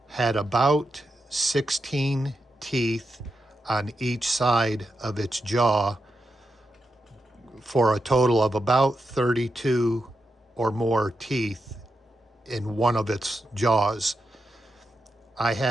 had about 16 teeth on each side of its jaw, for a total of about 32 or more teeth in one of its jaws. I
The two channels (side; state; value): both; normal; correlation 0.87